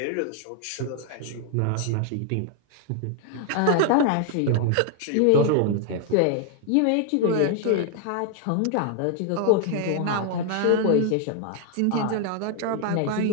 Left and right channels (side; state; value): both; different; correlation 0.00